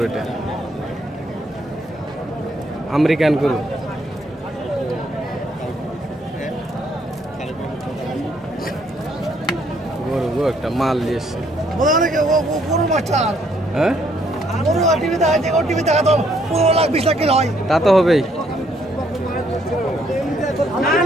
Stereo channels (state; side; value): normal; both; correlation 0.69